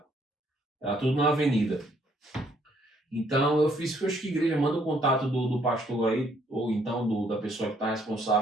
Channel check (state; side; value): normal; both; correlation 0.67